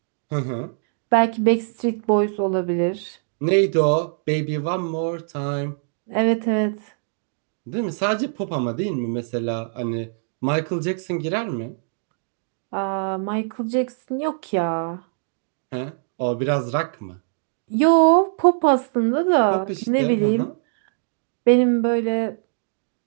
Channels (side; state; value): left; silent; digital silence